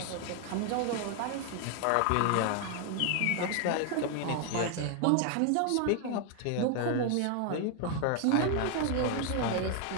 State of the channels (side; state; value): both; different; correlation 0.00